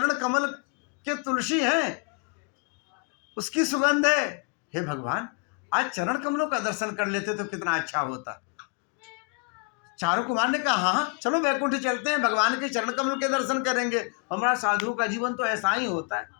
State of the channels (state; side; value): quieter; right; 35.2 dB